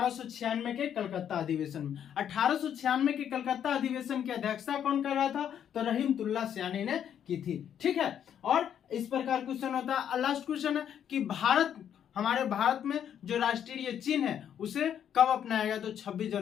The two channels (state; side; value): quieter; right; 9.2 dB